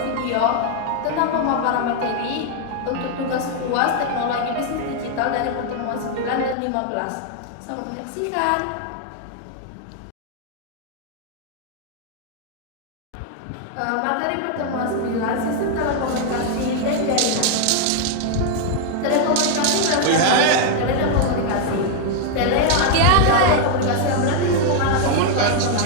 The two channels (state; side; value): different; both; correlation 0.00